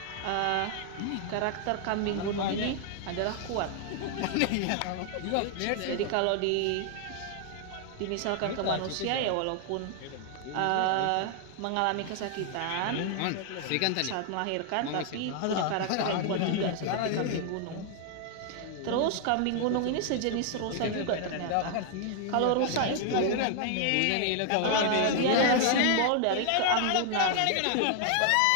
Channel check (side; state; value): both; different; correlation 0.00